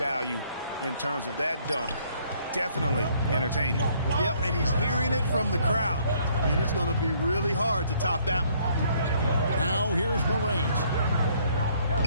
in terms of that dunk. Definitely entertaining. Yep, and he's hearing it from the crowd. I mean, it's going to be really hard to top that one. Now here's Morant.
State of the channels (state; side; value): inverted; both; correlation -0.64